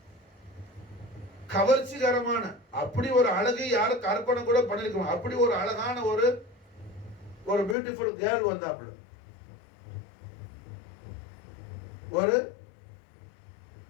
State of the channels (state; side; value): drops out; right; at 7.8 s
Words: கவர்ச்சிகரமான அப்படி ஒரு அழகை யாரும் கற்பனை கூட பண்ணிருக்கோம். அப்படி ஒரு அழகான ஒரு பியூட்டிஃபுல் கேர்ள் வந்தாப்புல, ஒரு